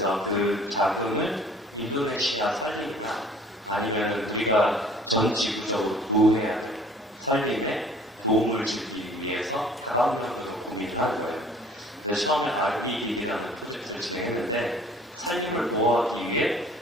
그 자금을 인도네시아 산림이나 아니면은 우리가 전 지구적으로 보호해야 될 산림에 도움을 주기 위해서 다방면으로 고민을 하는 거예요. 그래서 처음에 REDD라는 프로젝트를 진행했는데 산림을 보호하기 위해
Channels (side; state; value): both; normal; correlation 0.51